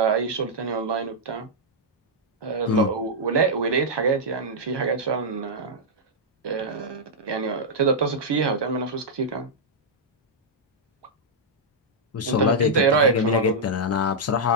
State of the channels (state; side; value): normal; both; correlation -0.07